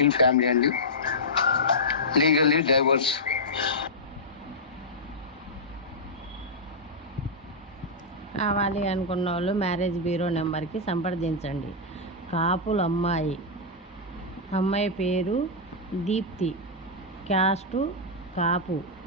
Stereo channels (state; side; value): normal; both; correlation -0.09